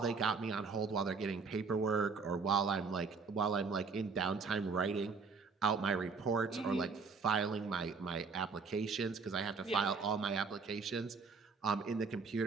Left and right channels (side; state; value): left; quieter; 4.8 dB